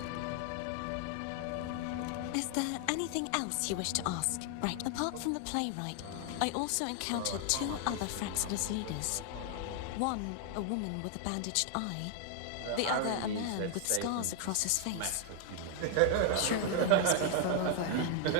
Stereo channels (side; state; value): both; different; correlation 0.00